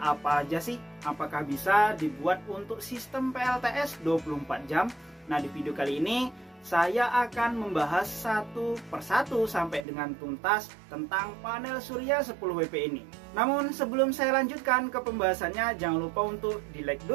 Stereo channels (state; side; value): drops out; left; at 9.9 s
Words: aja sih? Apakah bisa dibuat untuk sistem PLTS 24 jam? Nah, di video kali ini saya akan membahas satu persatu sampai dengan tuntas tentang panel surya 10 WP ini. Namun sebelum saya lanjutkan ke pembahasannya, jangan lupa untuk di like